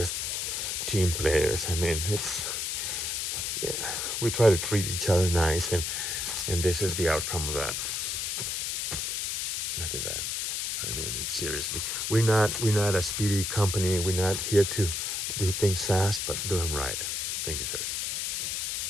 team players. I mean, we try to treat each other nice, and this is the outcome of that. Look at that. I mean, it's seriously, we're not a speedy company. We're not here to do things fast, but do them right. Thank you, sirs.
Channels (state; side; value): noise; left; hiss, 1 dB below the sound